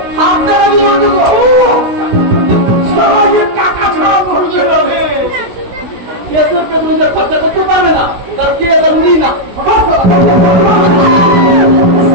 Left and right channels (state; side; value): late; left; 16 ms